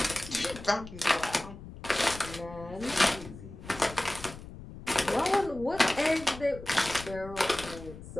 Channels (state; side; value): noise; left; rumble, 14 dB below the sound